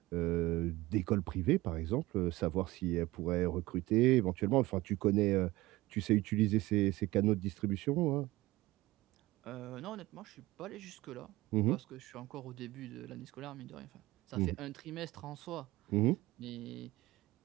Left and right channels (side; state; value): left; quieter; 19.1 dB